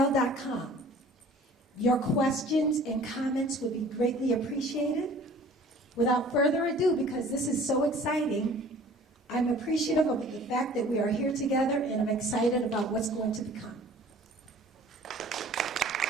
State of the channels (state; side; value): normal; both; correlation 0.49